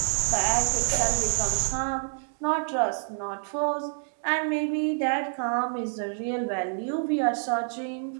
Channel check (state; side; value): silent; left; digital silence